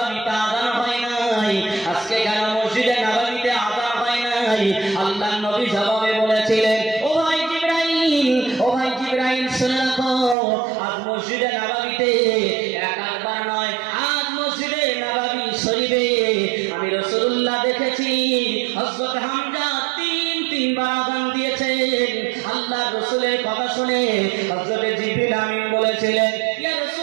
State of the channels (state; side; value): drops out; left; at 10.4 s